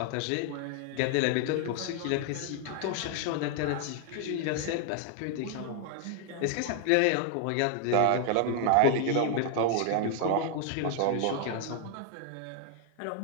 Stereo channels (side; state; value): both; different; correlation 0.00